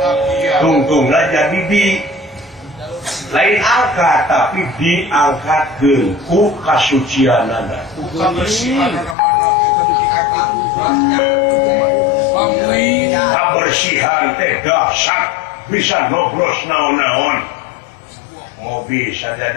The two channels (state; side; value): drops out; right; at 9.2 s